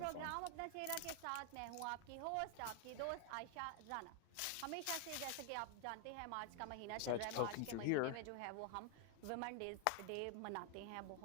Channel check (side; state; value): both; different; correlation 0.00